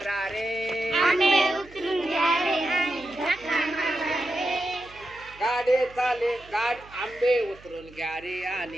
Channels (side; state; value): right; noise; hum, 23 dB below the sound